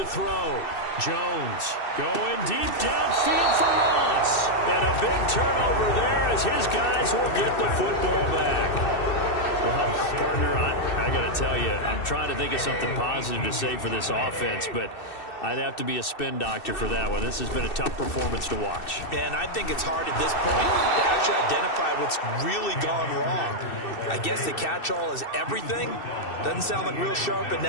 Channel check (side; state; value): right; late; 2.6 ms